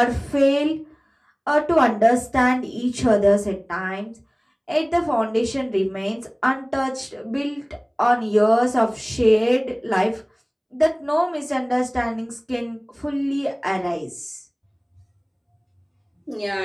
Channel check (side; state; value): both; identical; correlation 1.00